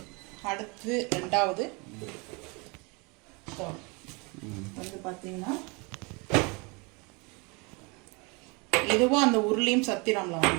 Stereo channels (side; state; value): left; quieter; 29.3 dB